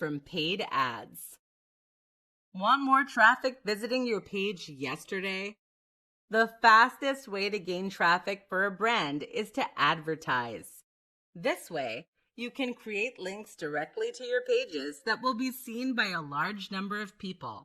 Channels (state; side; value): identical; both; correlation 1.00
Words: paid ads. Want more traffic visiting your page yesterday? The fastest way to gain traffic for a brand is to advertise. This way, you can create links directly to your pages that will be seen by a large number of